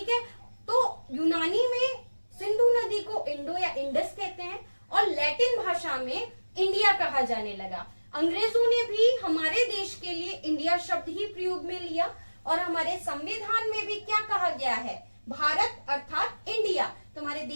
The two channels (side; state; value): both; inverted; correlation -1.00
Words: है। तो यूनानी में सिंधु नदी को इंडो या इंडस कहते हैं और लैटिन भाषा में इंडिया कहा जाने लगा। अंग्रेजों ने भी हमारे देश के लिए इंडिया शब्द ही प्रयोग में लिया और हमारे संविधान में भी क्या कहा गया है? भारत अर्थात इंडिया। तुम्हारे